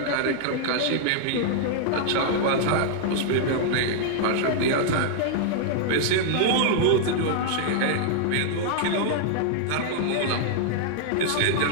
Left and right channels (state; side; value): different; both; correlation -0.01